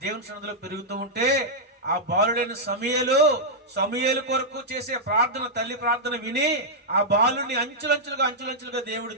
దేవుని సన్నిధిలో పెరుగుతూ ఉంటే ఆ బాలుడైన సమూయేలు కొరకు చేసే ప్రార్థన, తల్లి ప్రార్థన విని ఆ బాలుడిని అంచులంచులుగా దేవుడు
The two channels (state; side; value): normal; both; correlation -0.07